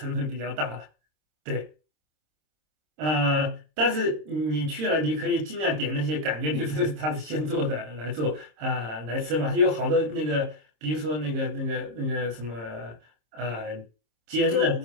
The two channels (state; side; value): late; left; 26 ms